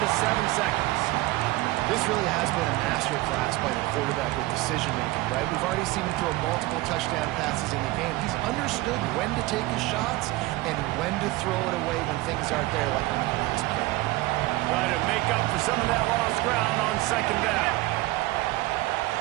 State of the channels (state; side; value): quieter; left; 19.3 dB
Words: 7 seconds. This really has been a master class by the quarterback with decision-making, right? We've already seen him throw multiple touchdown passes in the game. He's understood when to take his shots and when to throw it away when things aren't there, like on that last play. Try to make up for some of that lost ground on second down.